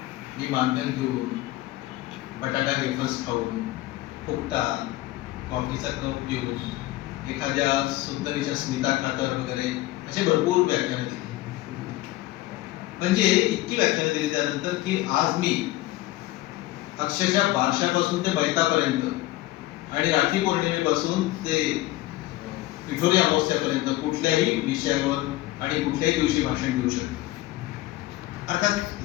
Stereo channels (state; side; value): quieter; right; 17.4 dB